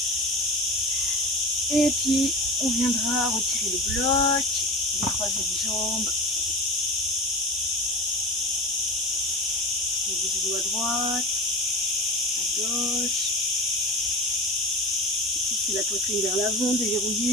Et puis, on viendra retirer le bloc, décroiser les jambes. Les genoux à droite, à gauche. Pousser la poitrine vers l'avant,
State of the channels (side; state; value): both; normal; correlation 0.30